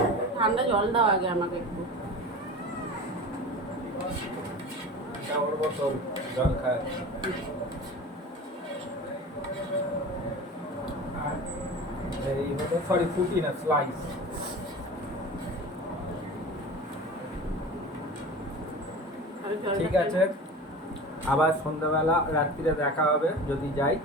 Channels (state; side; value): normal; both; correlation 0.34